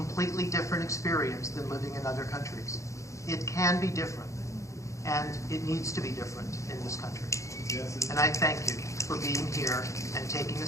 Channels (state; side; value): late; right; 0.15 ms